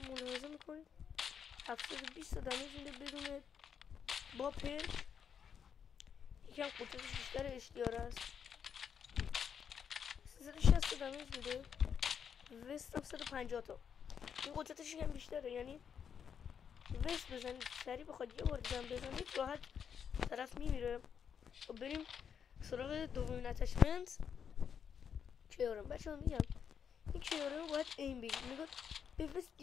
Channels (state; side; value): quieter; right; 7.5 dB